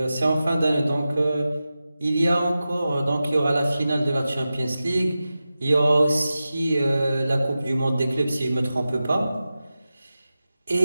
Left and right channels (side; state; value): both; inverted; correlation -0.94